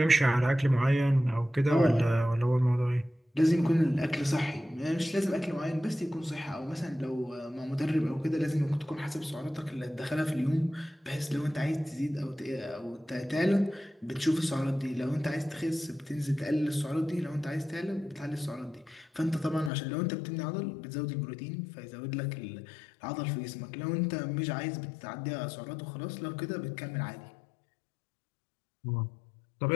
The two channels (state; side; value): drops out; right; at 19.7 s